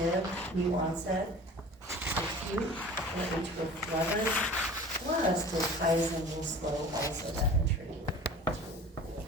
new onset, acute, or atrial flutter, plus diltiazem and slow also that entry.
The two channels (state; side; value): normal; both; correlation 0.41